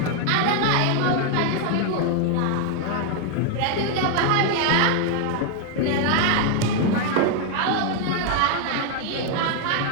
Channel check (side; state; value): both; different; correlation 0.00